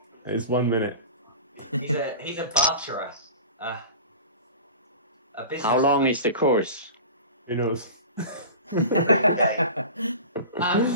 It's 1 minute. He's a barterer. A business. How long is the course? Who knows?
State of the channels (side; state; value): both; inverted; correlation -0.36